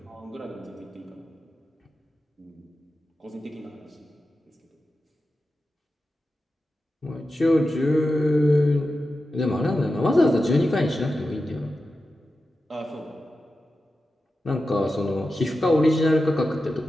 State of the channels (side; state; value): both; normal; correlation 0.92